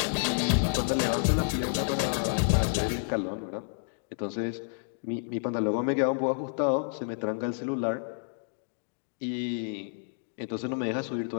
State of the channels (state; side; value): silent; right; digital silence